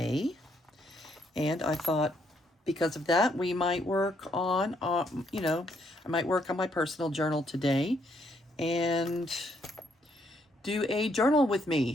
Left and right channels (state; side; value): normal; both; correlation 0.72